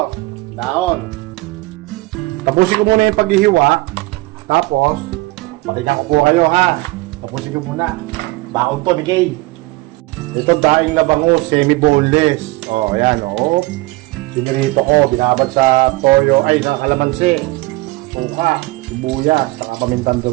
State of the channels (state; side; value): quieter; left; 21.5 dB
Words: Dahon. Tapusin ko muna yung paghihiwa. Tapos, patingnan ko po kayo, ha? Tapusin ko muna. Baon to ni Kay. Ito daing na bango, semi-boneless. Ayan, Sinirito ko, binabad sa toyo, sa kalamansi, suka, sibuyas, saka pamintang